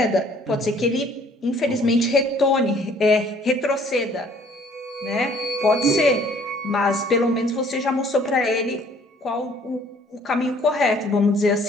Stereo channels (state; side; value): normal; both; correlation 0.58